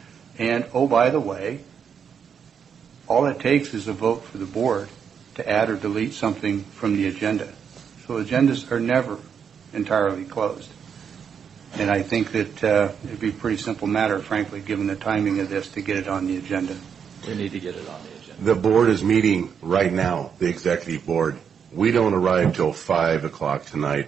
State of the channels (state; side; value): quieter; left; 7.2 dB